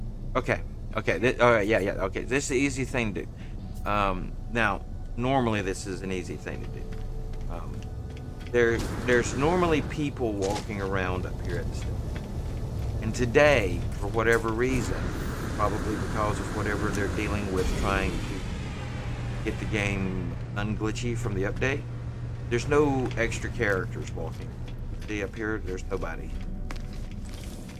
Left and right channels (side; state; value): both; identical; correlation 1.00